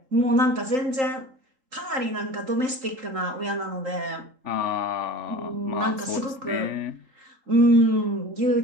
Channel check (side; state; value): left; late; 3.8 ms